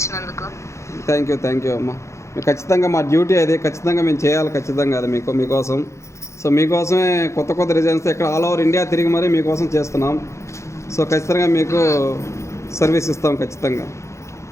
థ్యాంక్ యూ అమ్మా. ఖచ్చితంగా మా డ్యూటీ అది, ఖచ్చితంగా మేము చేయాలి, ఖచ్చితంగా అది మీకోసం. సో మీకోసమే కొత్త డిజైన్స్ ఇక్కడ ఆల్ ఓవర్ ఇండియా తిరిగి మరీ మీకోసం చేస్తున్నాం. సో ఖచ్చితంగా మీకు సర్వీస్ ఇస్తాం ఖచ్చితంగా.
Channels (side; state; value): right; late; 0.14 ms